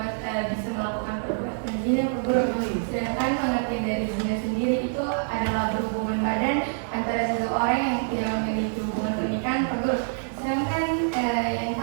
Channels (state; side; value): silent; left; digital silence